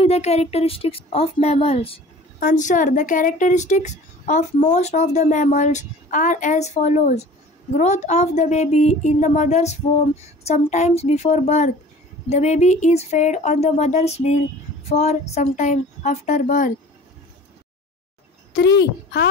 the characteristics of mammals. Answer. The characteristics of most of the mammals are as follows. Growth of the baby in the mother's womb sometimes before birth. The baby is fed on the mother's milk for some time after birth. 3.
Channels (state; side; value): normal; both; correlation 0.45